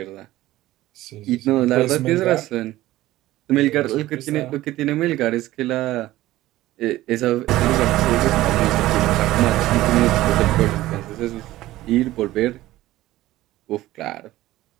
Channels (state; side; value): quieter; left; 16.1 dB